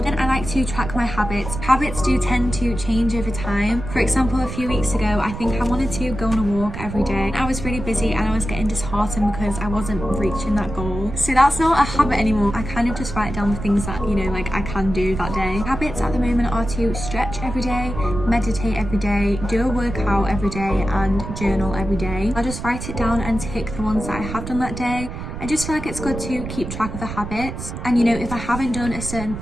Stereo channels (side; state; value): right; noise; rumble, 8 dB below the sound